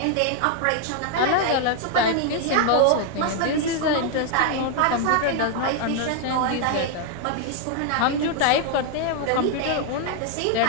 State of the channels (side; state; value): both; different; correlation 0.00